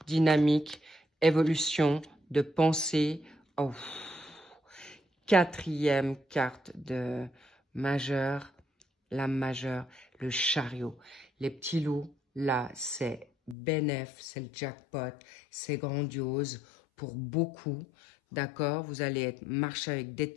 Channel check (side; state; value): right; drops out; at 13.6 s